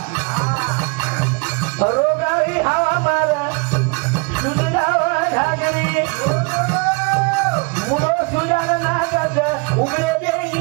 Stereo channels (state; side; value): quieter; left; 31.1 dB